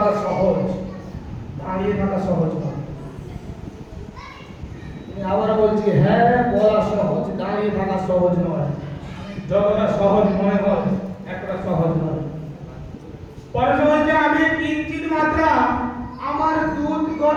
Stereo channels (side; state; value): both; identical; correlation 1.00